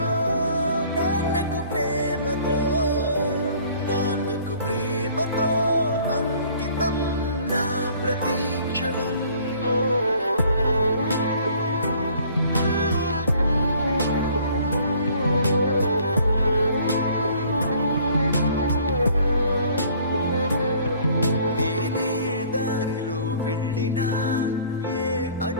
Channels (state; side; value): inverted; both; correlation -0.56